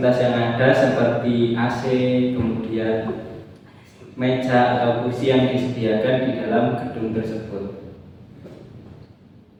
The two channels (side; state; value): both; identical; correlation 1.00